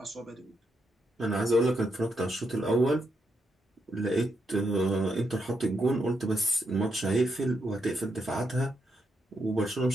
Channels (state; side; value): normal; both; correlation 0.81